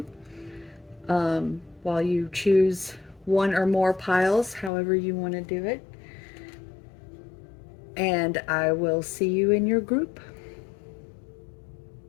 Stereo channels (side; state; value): right; drops out; at 4.7 s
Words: while you choose one or more piles, however you want to do it. And I will see you in your group.